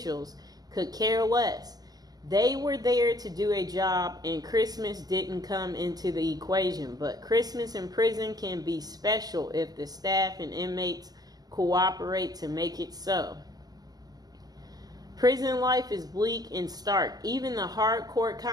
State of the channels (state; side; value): late; left; 0.19 ms